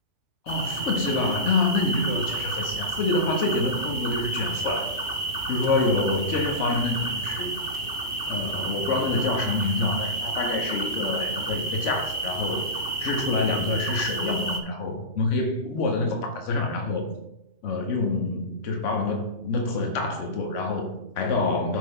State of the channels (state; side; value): late; right; 2.6 ms